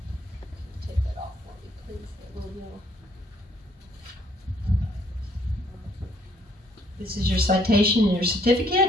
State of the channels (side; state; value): both; normal; correlation 0.65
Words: Take that off for me, please. That little yellow. This is your citation and your